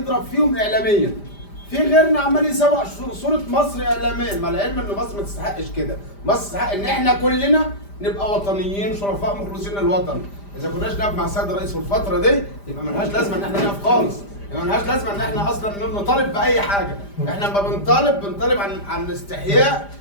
فيهم اعلاميا، في غيرنا عمال يسوق صوره مصر اعلاميا، مع العلم ان مصر ما تستحقش كده. مصر تستحق ان احنا كلنا نبقى وطنيين شرفاء مخلصين للوطن. اذا كناش نقف مع السيد الرئيس في الفتره دي يبقى ملهاش لازمه ان احنا نقف خالص، يبقى ملهاش لازمه ان احنا اصلا نطالب باي حاجه. احنا لما بنطالب عن استحياء،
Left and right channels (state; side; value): late; right; 5.0 ms